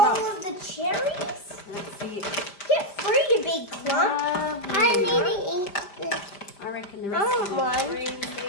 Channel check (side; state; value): right; late; 5.1 ms